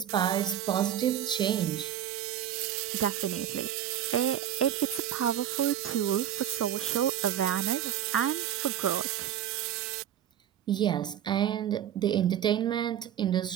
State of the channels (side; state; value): left; quieter; 10.6 dB